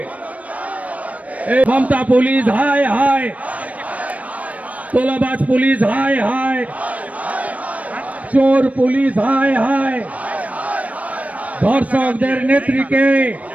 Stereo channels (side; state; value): left; late; 0.068 ms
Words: মমতা পুলিশ হায় হায়, তোলাবাজ পুলিশ হায় হায়, চোর পুলিশ হায় হায়। ধর্ষকদের নেত্রীকে